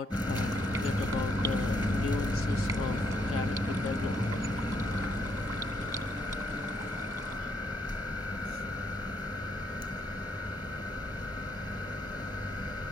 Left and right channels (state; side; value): normal; both; correlation 0.73